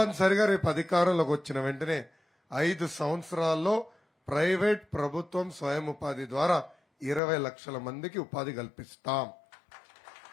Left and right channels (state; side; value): drops out; right; at 7.2 s